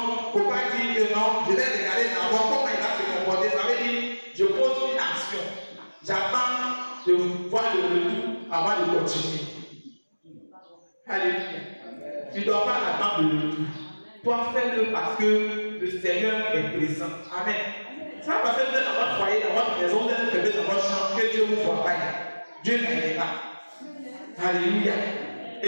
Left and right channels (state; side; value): inverted; both; correlation -1.00